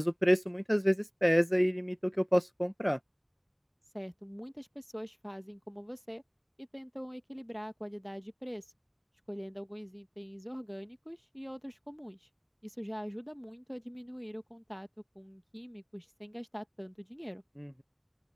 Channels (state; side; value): identical; both; correlation 1.00